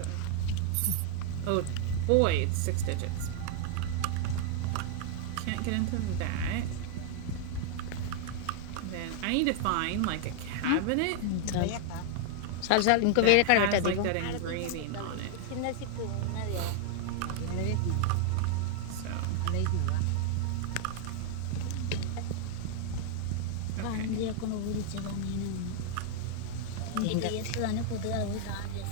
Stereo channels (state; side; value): different; both; correlation 0.00